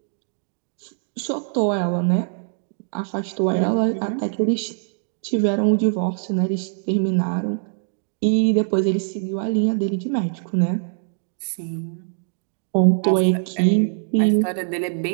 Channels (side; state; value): left; silent; digital silence